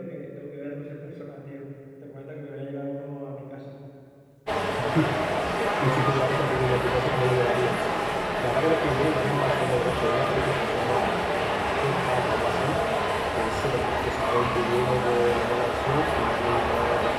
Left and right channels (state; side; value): identical; both; correlation 1.00